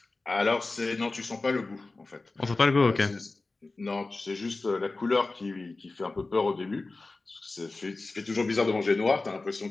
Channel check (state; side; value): quieter; right; 3.4 dB